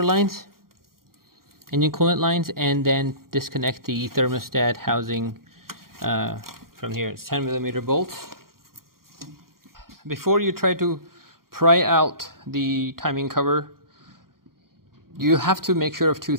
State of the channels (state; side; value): late; left; 0.92 ms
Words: lines, engine coolant lines, and then disconnect the thermostat housing from here. It's 10mm bolts. Before you try to pry out the timing cover, you have to make sure of two